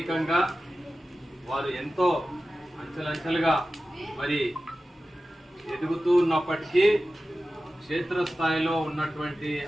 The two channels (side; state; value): both; normal; correlation 0.94